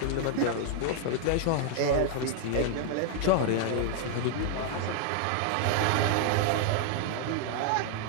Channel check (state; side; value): different; both; correlation 0.00